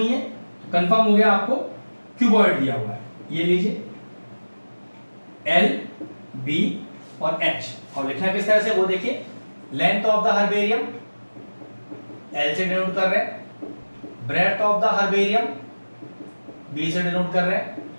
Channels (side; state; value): both; inverted; correlation -1.00